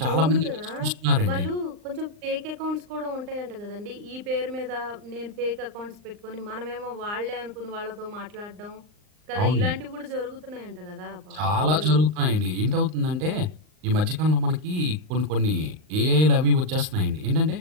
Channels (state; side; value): late; left; 39 ms